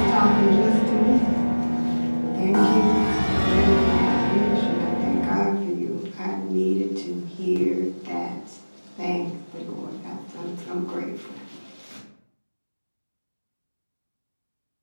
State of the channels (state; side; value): inverted; both; correlation -1.00